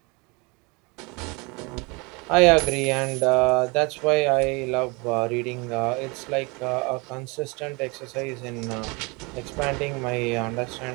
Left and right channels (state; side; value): quieter; left; 28.4 dB